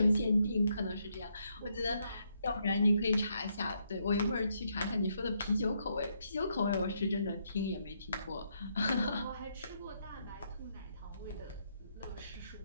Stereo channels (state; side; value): inverted; both; correlation -0.76